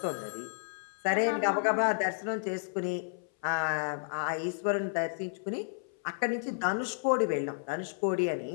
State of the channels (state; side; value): silent; right; 57 dB below the other